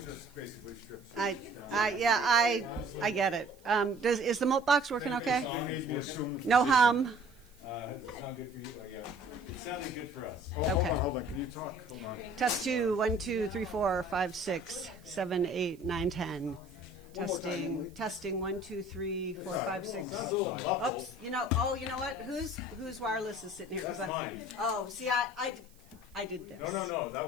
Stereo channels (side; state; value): right; noise; hiss, 29 dB below the sound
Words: they just basically strip search I, down there. I get it. Is the moat box working okay? They made me assume. No hum. Does it sound good for you? Oh, yeah. It sounded good for us. Oh, Okay. Hold on, can you talk? Hold on. Test 2, 1, 2, 3, 4, 5, 6, 7, 8, 9, 10. Testing, testing, 1, 2, 3, 4, 5, 6. Sounds a little muffled. Oops, you know what? Whose wireless is sitting here? That's I, mine. oh, see, I did this. No, that